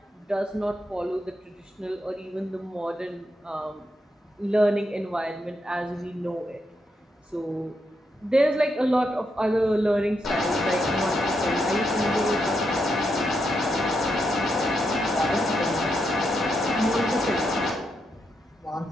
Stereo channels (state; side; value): normal; both; correlation 0.82